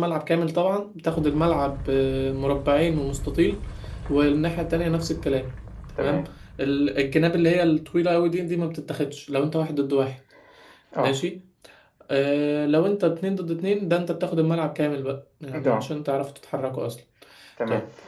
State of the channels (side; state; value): both; identical; correlation 1.00